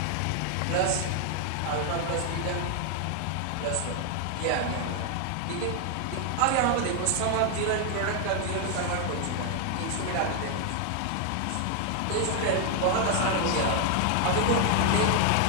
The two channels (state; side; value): different; both; correlation 0.00